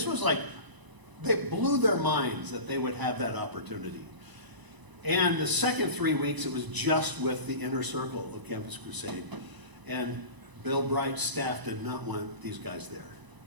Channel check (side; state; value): left; late; 1.0 ms